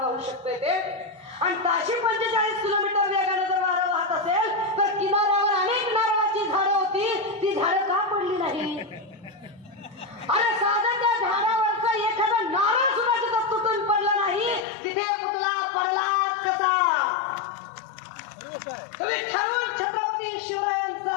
शकतोय ते? आणि ताशी 45 किलोमीटर वेगानं जर वारं वाहत असेल तर किनाऱ्यावर अनेक नारळाची झाडं होती, ती झाडं का पडली नाही? अरे साधं त्या झाडावरचा एखादा नारळ सुद्धा तिथं तुटून पडला नाही, तिथे पुतळा पडलाच कसा? तुम्ही ठरवून छत्रपती शिवरायांचा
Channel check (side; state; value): right; drops out; at 14.7 s